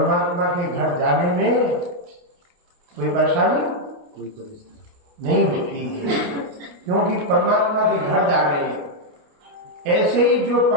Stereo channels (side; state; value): left; late; 28 ms